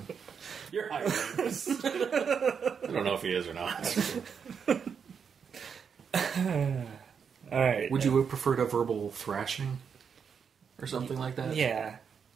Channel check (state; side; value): quieter; left; 6.7 dB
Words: You're hiring this. I don't know if he is or not. Alright. Would you have preferred a verbal thrashing? Or something like that? Yeah.